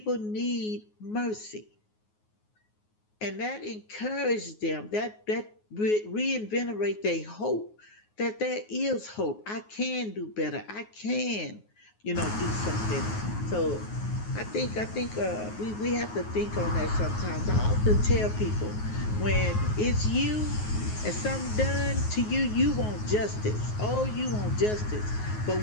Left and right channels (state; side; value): late; right; 9.5 ms